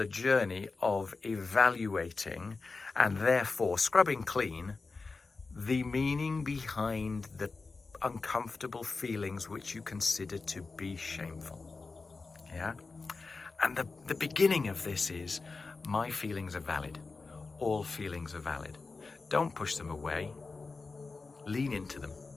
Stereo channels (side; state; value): right; quieter; 4.1 dB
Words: journey of evaluating and therefore scrubbing clean the meaning behind the uncomfortable feelings which you consider to be shameful. Yeah? And the beginning of this is, my feelings are valid. All feelings are valid. Don't push them away. Lean into them.